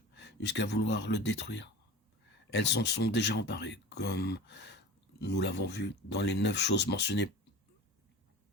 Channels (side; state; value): both; normal; correlation 0.35